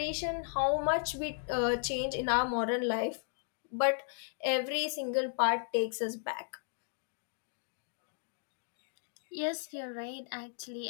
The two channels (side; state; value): right; silent; digital silence